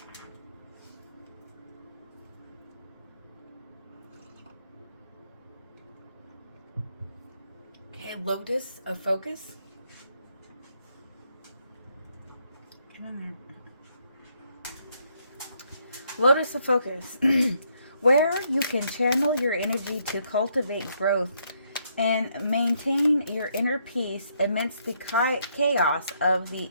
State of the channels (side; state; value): both; inverted; correlation -0.73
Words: Okay, Lotus of Focus. Lotus of Focus. Where you can channel your energy to cultivate growth and maintain your inner peace amidst the chaos of the